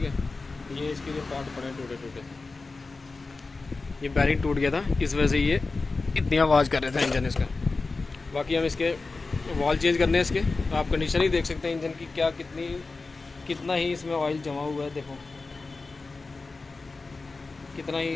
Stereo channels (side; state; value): right; quieter; 3.8 dB